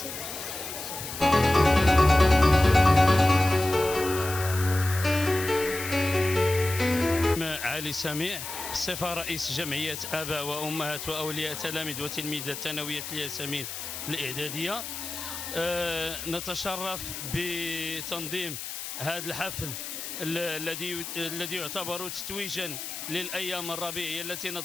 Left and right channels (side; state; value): left; noise; hiss, 8 dB below the sound